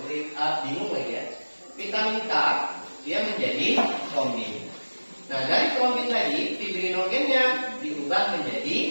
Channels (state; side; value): inverted; both; correlation -1.00